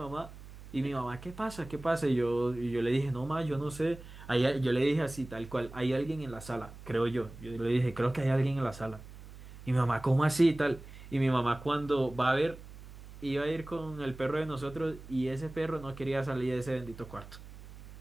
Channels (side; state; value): right; noise; hum, 16 dB below the sound